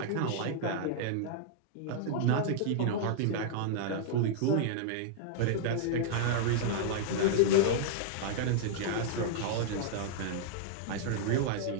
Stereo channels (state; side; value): different; both; correlation -0.01